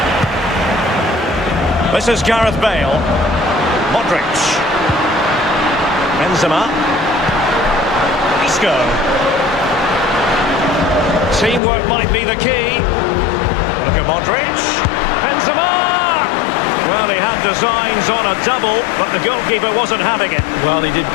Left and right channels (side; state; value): right; drops out; at 11.6 s